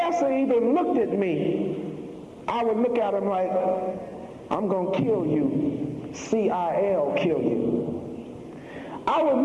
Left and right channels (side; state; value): both; identical; correlation 1.00